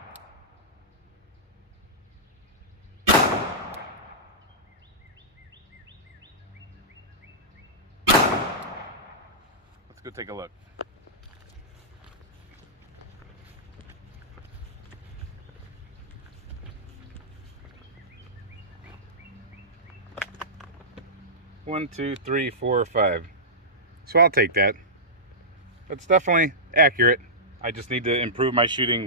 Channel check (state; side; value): normal; both; correlation -0.16